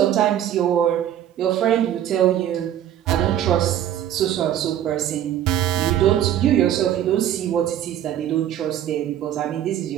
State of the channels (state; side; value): quieter; left; 11.2 dB